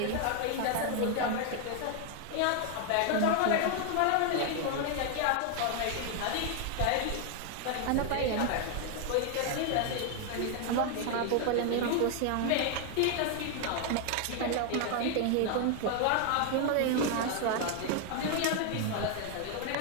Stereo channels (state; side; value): different; both; correlation 0.00